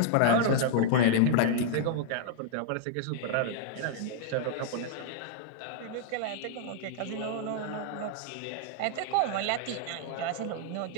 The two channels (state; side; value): different; both; correlation -0.01